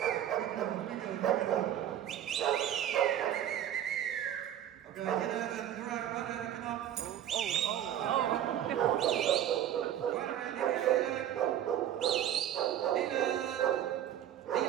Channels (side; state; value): left; quieter; 10.9 dB